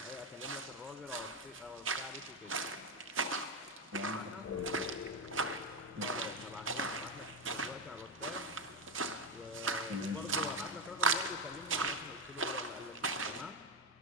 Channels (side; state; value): both; normal; correlation 0.10